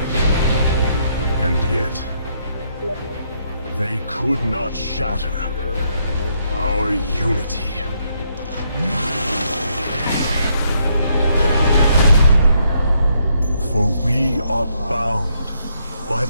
And yet, they could not shatter our unity. For we are bound by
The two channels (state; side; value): inverted; both; correlation -0.74